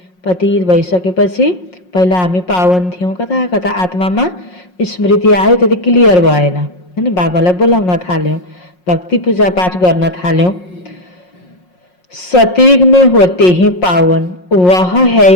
पतित भइसकेपछि पहिला हामी पावन थियौं, कता कता आत्मामा स्मृति आयो, त्यति क्लियर भएन हैन। बाबालाई बोलाउन थाल्यौं, भक्ति पूजा पाठ गर्न थाल्यौं। सतयुग में होते हैं पावन, वह है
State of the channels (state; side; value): late; right; 5.5 ms